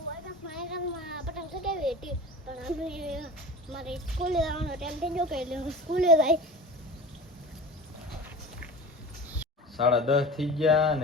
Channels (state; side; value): normal; both; correlation 0.35